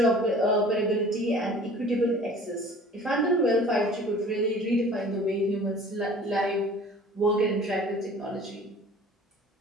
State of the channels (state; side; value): normal; both; correlation 0.47